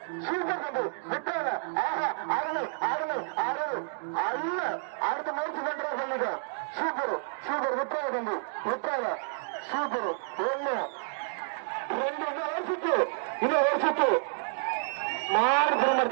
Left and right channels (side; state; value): left; silent; digital silence